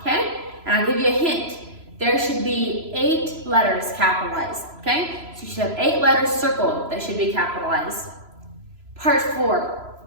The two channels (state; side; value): late; left; 3.0 ms